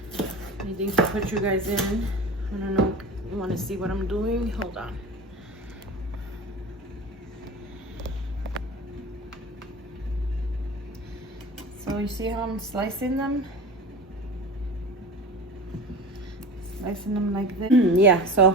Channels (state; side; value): normal; both; correlation 0.33